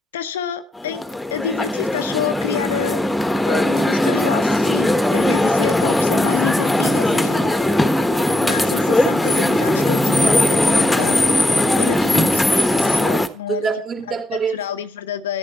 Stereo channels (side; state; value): both; normal; correlation 0.81